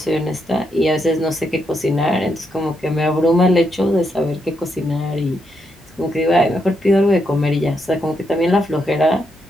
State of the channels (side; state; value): both; normal; correlation 0.80